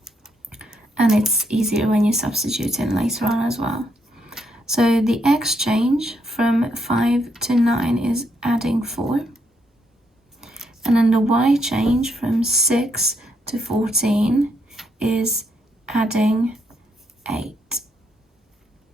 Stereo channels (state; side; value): normal; both; correlation 0.76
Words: And it's easier when you substitute in later on as well. So the x change from 5 to 9 is adding 4. And then the y change from 6 to 14 is adding 8.